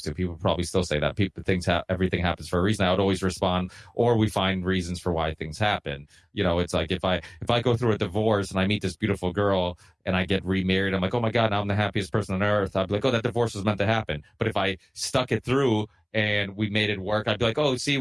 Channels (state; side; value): identical; both; correlation 1.00